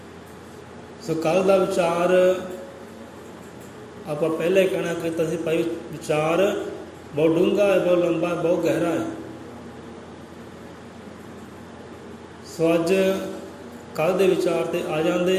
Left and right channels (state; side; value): identical; both; correlation 1.00